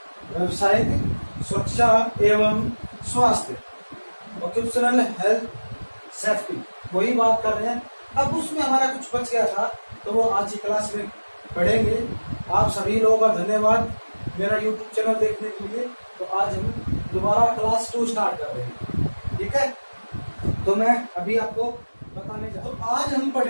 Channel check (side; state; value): both; inverted; correlation -1.00